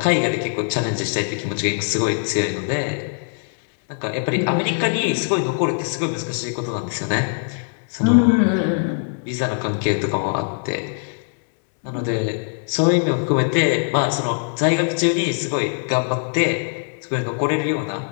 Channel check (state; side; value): silent; right; digital silence